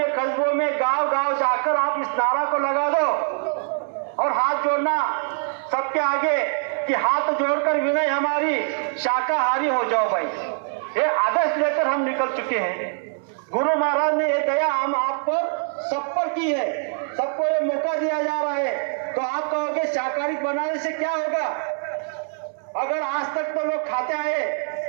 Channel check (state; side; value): silent; left; 63 dB below the other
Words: कस्बों में, गांव गांव जाकर आप इस नारा को लगा दो और हाथ सबके आगे कि हाथ जोड़कर विनय हमारी, शाकाहारी हो जाओ भाई। ये आदेश लेकर हम निकल चुके हैं। गुरु महाराज ने ये दया हम आप पर सब पर की है, सबको ये मौका दिया जा रहा है। तो आप कहोगे शाकाहारी बनाने से क्या होगा? अगर आज तक तो लोग खाते आए,